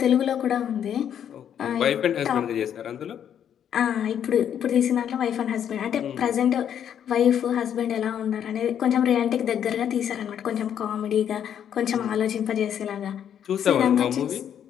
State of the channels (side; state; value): right; quieter; 9.2 dB